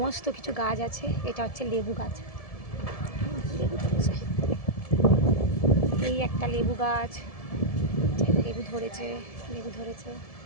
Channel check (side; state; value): right; late; 1.7 ms